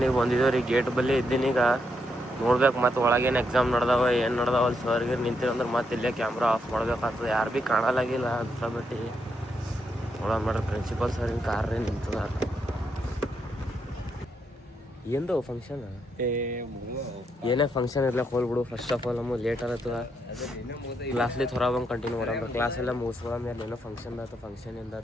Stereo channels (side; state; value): both; normal; correlation 0.79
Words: ಬಂದಿದ್ದೇವೆ ರೀ. ಗೇಟ್ ಬಲ್ಲಿ ಇದ್ದೀನಿ. ಈಗ ನೋಡ್ಬೇಕು ಮತ್ತೆ ಒಳಗೇನು ಎಕ್ಸಾಮ್ ನಡೆದಾವ ಏನು ನಡೆದಾವ ಅಲ್ಲಿ ಸರ್ಗೆ ನಿಂತಿರಂದ್ರೆ ಮತ್ತೆ ಇಲ್ಲೇ ಕ್ಯಾಮ್ರಾ ಆಫ್ ಮಾಡ್ಬೇಕಾಗ್ತದೆ. ಯಾರು ಭೀ ಕಾಣಲಾಗಿಲ್ಲ ಅಂತ ಬಿಟ್ಟು ನೋಡೋಣ ಮಾಡ್ರಿ. ಪ್ರಿನ್ಸಿಪಲ್ ಸರಿನ ಕಾರ್ ರೀ ನಿಂತದ. ఏందో ఫంక్షన్ ಏನೇ ಫಂಕ್ಷನ್ ಇರ್ಲಕ್ಕೆ ಹೋಗ್ಬಿಡು. ಫಸ್ಟ್ ಆಫ್ ಆಲ್ ನಮಗೆ ಲೇಟ್ ಆಗತ್ತದ. ಕ್ಲಾಸ್ಲಿ ಥೊರ ಬಂದು ಕಂಟಿನ್ಯೂ ಮಾಡೋಣ. ಕ್ಲಾಸ್ ಎಲ್ಲ ಮುಗಿಸ್ಕೊಳ್ಳೋ ಮೇಲೆ ಏನೋ ಫಂಕ್ಷನ್ ಆಯ್ತು. ಫಂಕ್ಷನ್ ಇಂದ